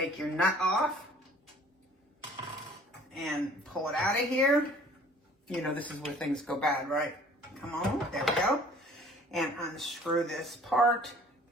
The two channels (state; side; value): normal; both; correlation 0.52